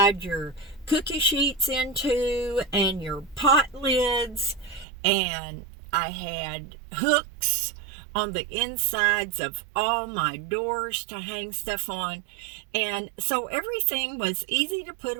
your cookie sheets into and your pot lids. And I had hooks on the insides of all my doors to hang stuff on. And so everything was easy to put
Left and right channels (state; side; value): drops out; left; at 4.9 s